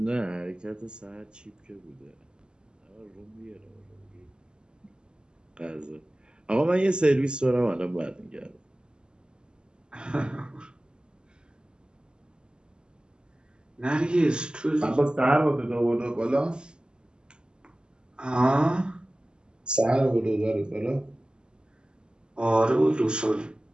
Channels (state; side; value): late; left; 0.049 ms